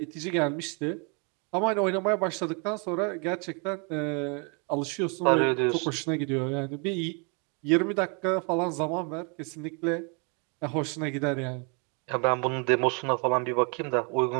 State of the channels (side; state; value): left; quieter; 35.3 dB